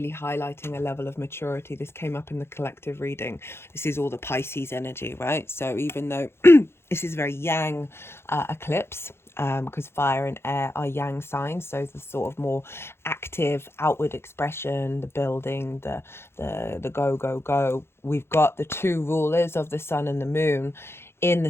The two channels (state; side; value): late; right; 0.12 ms